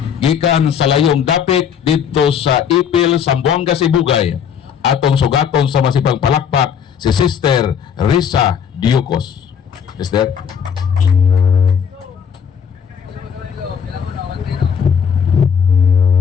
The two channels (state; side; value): quieter; right; 7.6 dB